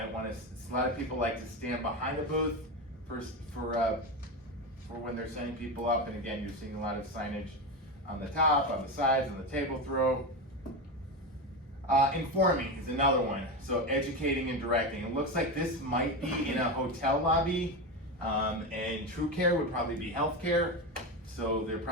want to. A lot of people like to stand behind a booth for when they're sending people up. And again, you're seeing a lot of signage on the top, on the sides, on the table throw. Informing is another one. So educating and directing. It looks like this might be in a hotel lobby, and True Care would probably be healthcare. So they're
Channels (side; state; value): both; normal; correlation 0.18